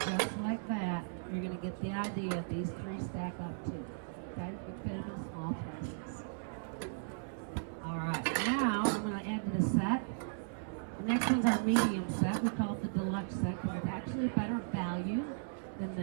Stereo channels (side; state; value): left; silent; 53 dB below the other